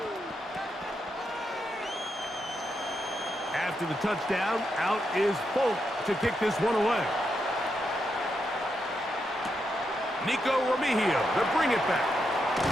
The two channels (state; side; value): normal; both; correlation 0.83